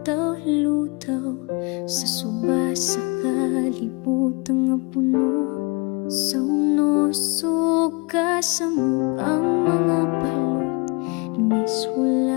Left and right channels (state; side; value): quieter; right; 29.7 dB